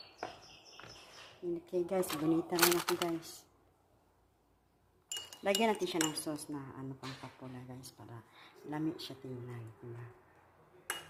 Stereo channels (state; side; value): identical; both; correlation 1.00